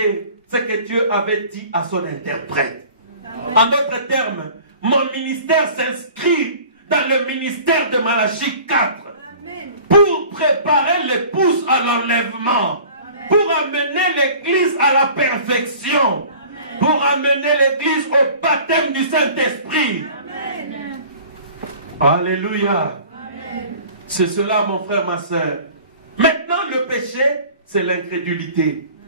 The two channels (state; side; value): inverted; both; correlation -0.46